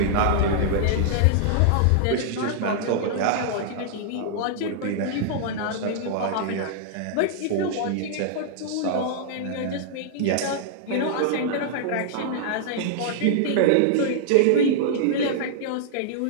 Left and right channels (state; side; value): different; both; correlation -0.01